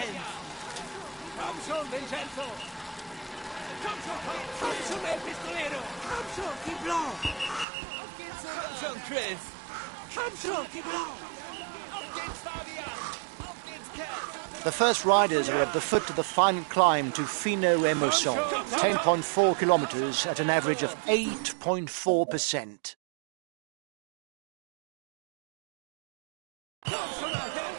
Komm schon, Vincenzo! Komm schon, El Pistolero! Komm schon, Thibaut! Auf geht's, Komm schon, Chris! Komm schon, Thibaut! Auf geht's, Fabian! Auf geht's, Ken! The first riders are at the foot of the final climb to Fino Emotion, 10.4 kilometers at an average of 8.4%.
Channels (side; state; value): left; drops out; at 7.7 s